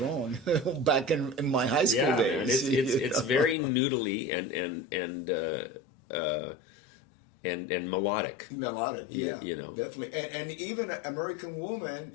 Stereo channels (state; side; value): drops out; right; at 3.6 s